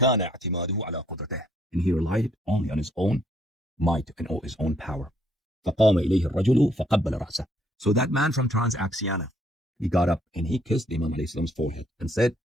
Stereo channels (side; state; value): both; normal; correlation 0.68